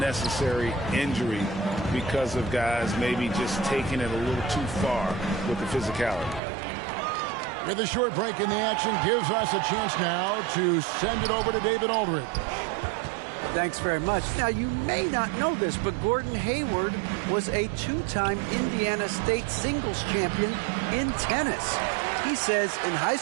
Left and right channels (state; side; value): drops out; left; at 6.4 s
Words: injury because of guys maybe just taking it a little too far with the physicality. With a short break in the action gives us a chance now to send it over to David Aldridge. Thanks very much. Now, you may not know this, but Gordon Hayward was a 2-time Indiana State singles champion in tennis. He says, in high